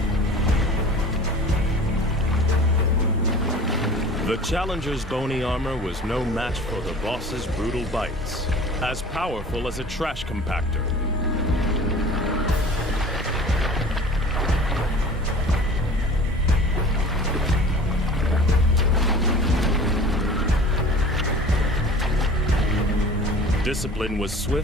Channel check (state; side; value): normal; both; correlation 0.42